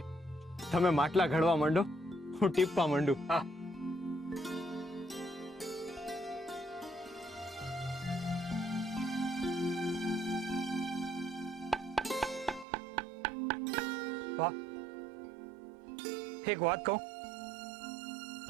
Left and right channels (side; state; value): left; drops out; at 12.7 s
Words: તમે માટલા ઘડવા માંડો, હું ટીપવા માંડું. હા. વાહ, એક વાત કહું